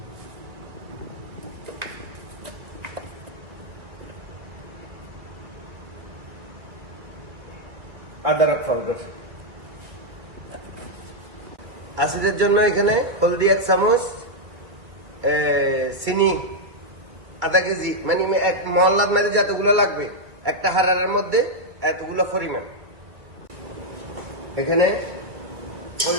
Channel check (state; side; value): late; left; 2.3 ms